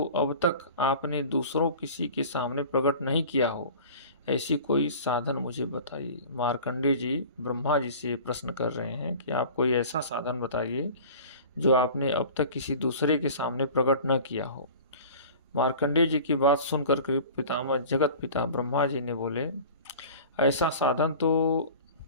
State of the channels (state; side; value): inverted; both; correlation -0.40